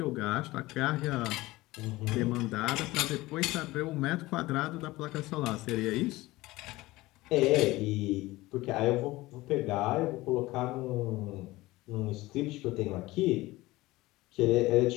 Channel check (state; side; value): quieter; right; 19.2 dB